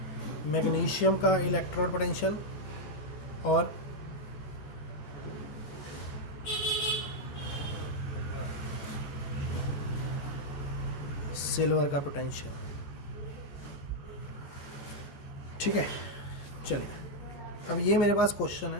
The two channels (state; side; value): late; right; 14 ms